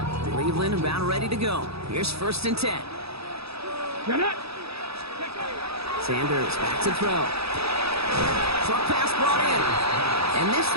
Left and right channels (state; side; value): late; left; 0.78 ms